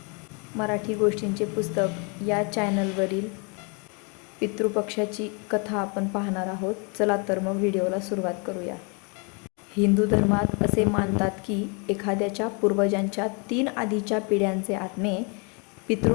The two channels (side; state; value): right; quieter; 34.1 dB